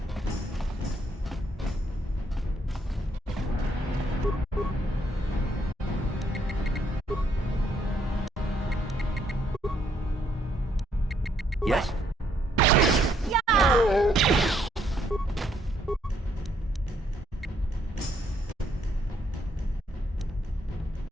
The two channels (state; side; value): normal; both; correlation 0.71